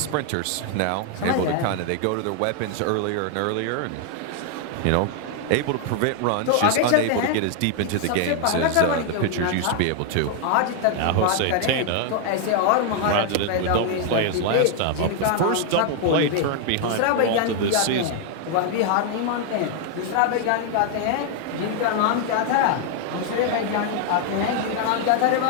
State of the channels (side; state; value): both; different; correlation 0.00